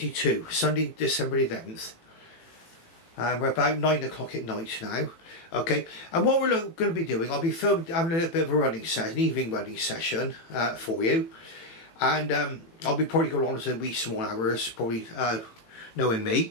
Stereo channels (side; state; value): right; late; 18 ms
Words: Sunday, December the 11th. We're about 9 o'clock at night now. Okay, and what we're going to be doing, I'll be having a little bit of a running session, an evening running session for you, and I'll be probably going on to wee small hours, probably knowing